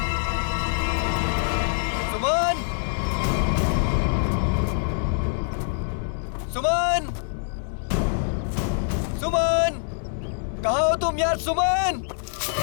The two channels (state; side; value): silent; right; digital silence